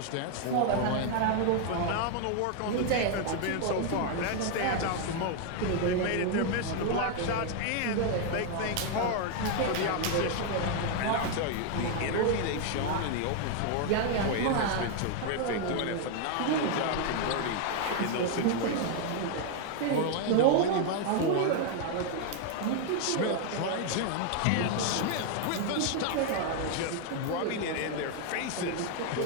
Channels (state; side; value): different; both; correlation 0.00